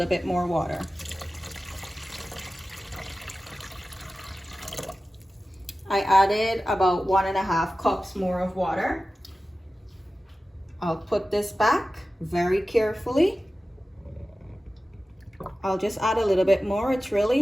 bit more water. I added about 1.5 cups more of water. I'll put this back very carefully. I'll just add a little bit more. It's really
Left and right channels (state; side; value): normal; both; correlation 0.95